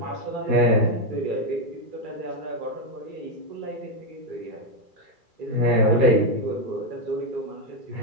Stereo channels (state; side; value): late; left; 2.3 ms